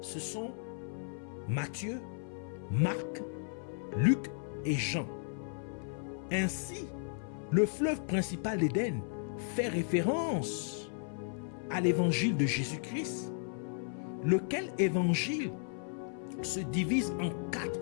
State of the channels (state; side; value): silent; right; 55 dB below the other